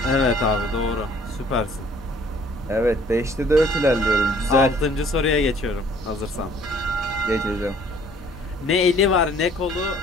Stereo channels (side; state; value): both; normal; correlation 0.57